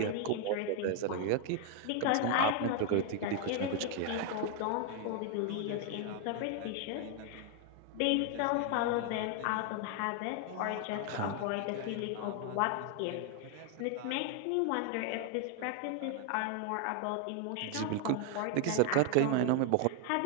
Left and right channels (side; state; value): both; different; correlation 0.01